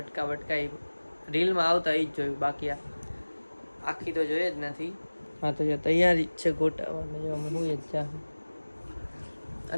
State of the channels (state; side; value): inverted; both; correlation -1.00